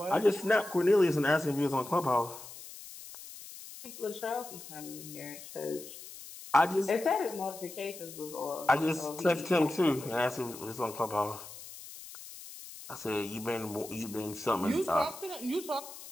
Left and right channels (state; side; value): noise; left; hiss, 14 dB below the sound